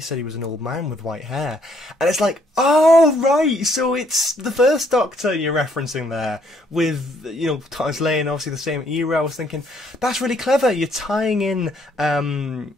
he was an old man with white hair. And it's like, oh, right, so it's the first Doctor you're referencing there with, you know, Thomas Lane, obviously the same era. I was thinking, that's really clever. You're tying in,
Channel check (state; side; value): normal; both; correlation 0.68